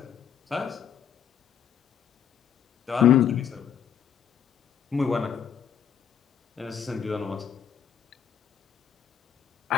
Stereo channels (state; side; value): quieter; right; 8.4 dB